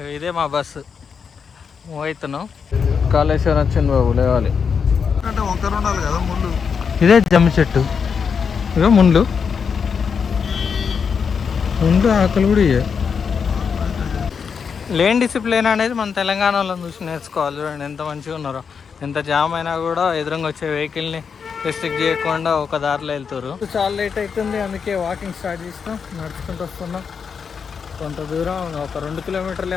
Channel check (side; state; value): right; quieter; 6.2 dB